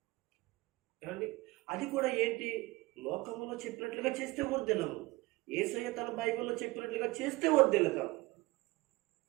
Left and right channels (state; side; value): quieter; left; 21.1 dB